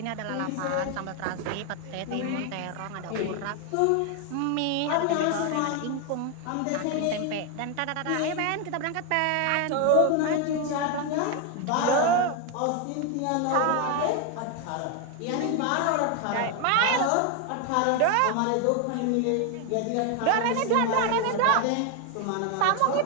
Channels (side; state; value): both; different; correlation 0.01